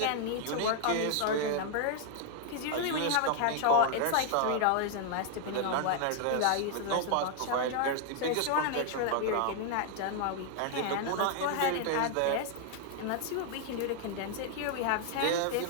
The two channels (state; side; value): different; both; correlation 0.00